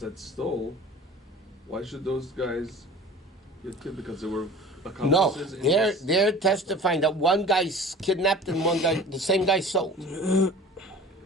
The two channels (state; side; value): normal; both; correlation 0.42